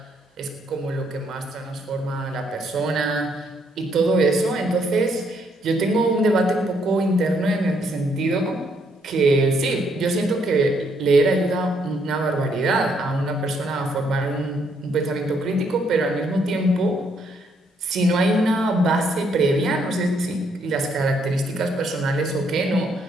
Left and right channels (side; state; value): both; normal; correlation 0.72